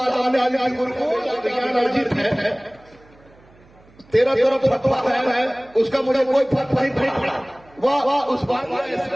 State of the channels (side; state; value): right; noise; hum, 28 dB below the sound